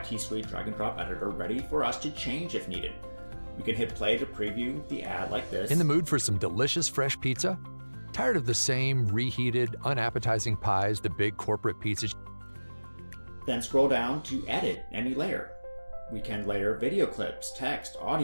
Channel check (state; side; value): inverted; both; correlation -1.00